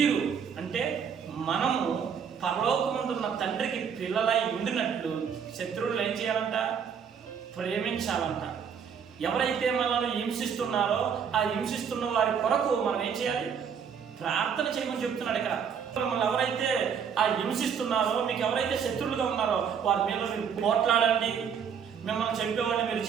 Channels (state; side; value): quieter; left; 7.2 dB